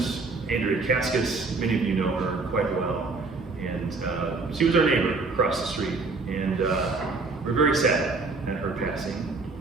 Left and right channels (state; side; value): quieter; left; 3.9 dB